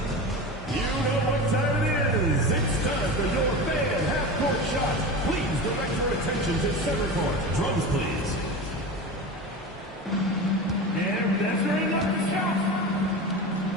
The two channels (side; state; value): both; normal; correlation 0.28